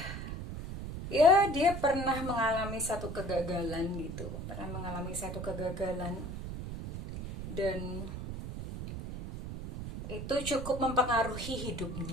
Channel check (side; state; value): right; noise; rumble, 7 dB below the sound